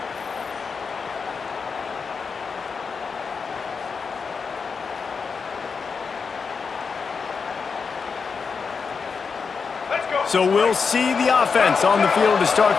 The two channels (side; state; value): right; quieter; 5.4 dB